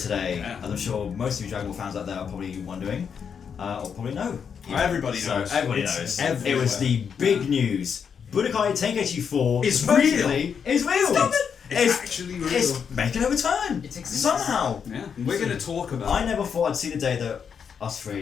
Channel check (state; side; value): quieter; right; 6.9 dB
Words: as I'm sure most of you Dragon Ball fans out there are probably wondering, or probably know. Everybody knows. Everybody knows. It was the big news. Budokai Tenkaichi 4 is real. Stop it! It's actually real. It's making a return. It exists. Somehow. Yeah. We're going to talk about I never thought I'd see the day that us